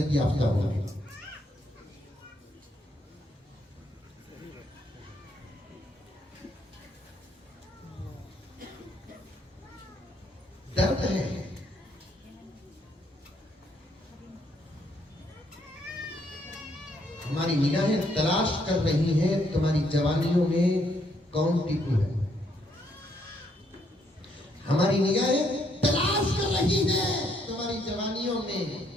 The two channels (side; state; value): both; normal; correlation 0.72